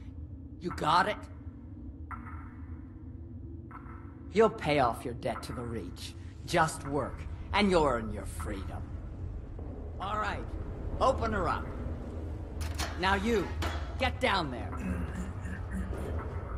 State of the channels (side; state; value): both; identical; correlation 1.00